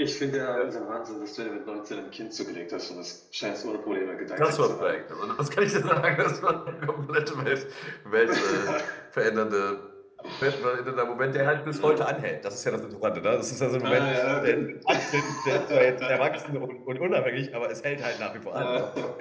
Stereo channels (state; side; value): identical; both; correlation 1.00